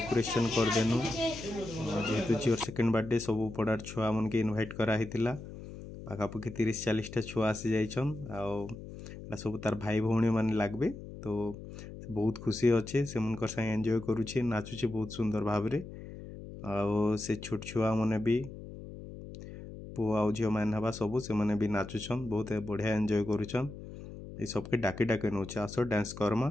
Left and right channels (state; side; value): noise; left; hum, 12 dB below the sound